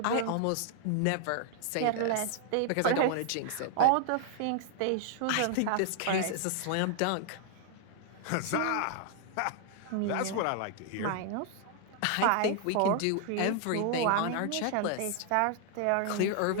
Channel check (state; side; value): different; both; correlation -0.01